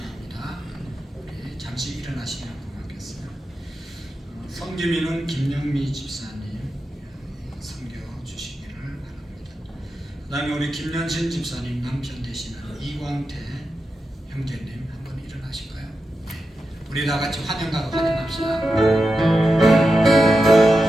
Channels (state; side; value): normal; both; correlation 0.90